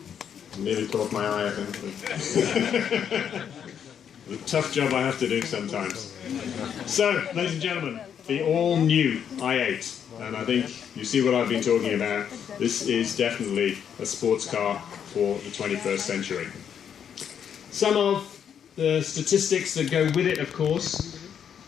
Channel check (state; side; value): quieter; right; 8.3 dB